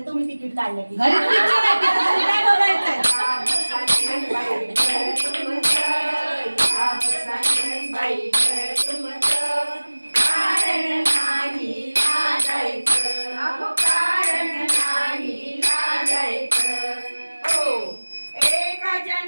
तुम्ही तिकीट काढलं की घरी पिक्चर आहे तिथं तुम्ही काय बघायचंय? एका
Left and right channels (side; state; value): both; inverted; correlation -1.00